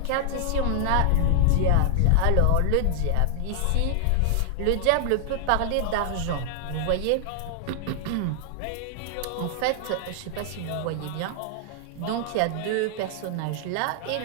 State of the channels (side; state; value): both; different; correlation 0.00